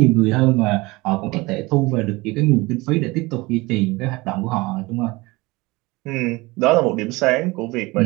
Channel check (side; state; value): left; quieter; 22.6 dB